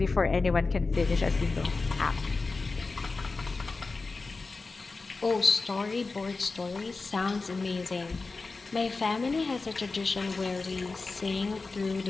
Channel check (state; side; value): quieter; right; 3.9 dB